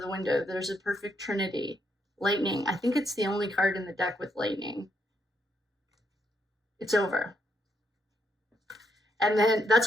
window. There's a perfect trinity. Lightning. I think it's the only card in the deck with lightning. It's over. And then, that's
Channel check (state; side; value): normal; both; correlation 0.77